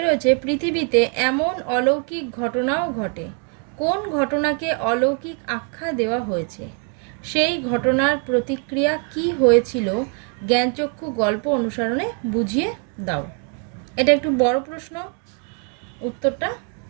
পৃথিবীতে এমন অলৌকিক ঘটনাও ঘটে। কোন ঘটনাকে অলৌকিক আখ্যা দেওয়া হয়েছে? সেই ঘটনার প্রতিক্রিয়া কি হয়েছিল জ্ঞানচক্ষু গল্প অনুসরণে বুঝিয়ে দাও। এটা একটু বড় প্রশ্ন, উত্তরটা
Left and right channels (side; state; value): left; quieter; 38.9 dB